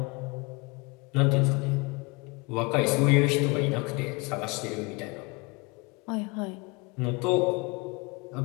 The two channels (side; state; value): right; quieter; 27.9 dB